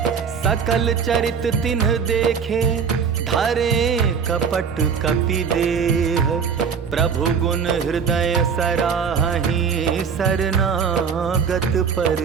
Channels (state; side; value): quieter; left; 6.4 dB